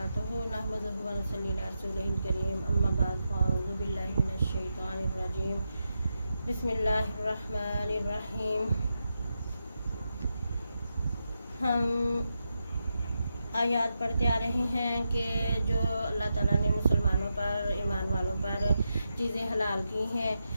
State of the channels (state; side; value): inverted; both; correlation -0.87